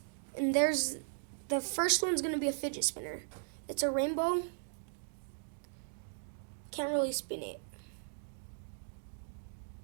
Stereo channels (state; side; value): silent; left; digital silence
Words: there's the first one's gonna be a fidget spinner. It's a rainbow. Can't really spin it.